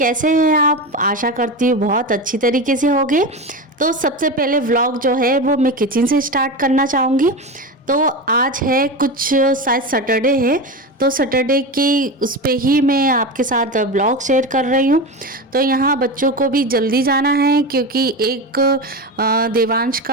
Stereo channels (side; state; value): both; normal; correlation 0.22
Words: हैं आप? आशा करती हूँ बहुत अच्छी तरीके से होंगे। तो सबसे पहले व्लॉग जो है वो मैं किचन से स्टार्ट करना चाहूँगी। तो आज है कुछ शायद सैटरडे है, तो सैटरडे की उस पे ही मैं आपके साथ ब्लॉग शेयर कर रही हूँ। तो यहाँ बच्चों को भी जल्दी जाना है क्योंकि एक देवांश